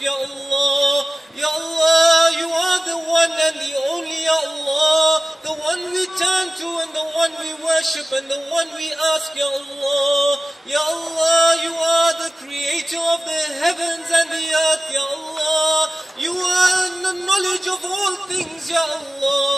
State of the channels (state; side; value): normal; both; correlation 0.96